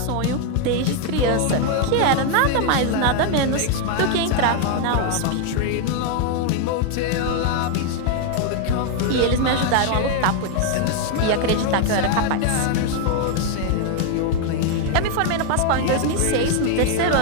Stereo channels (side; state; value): both; different; correlation 0.01